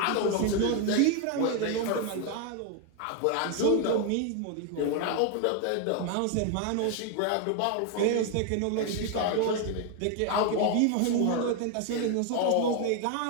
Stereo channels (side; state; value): both; different; correlation 0.01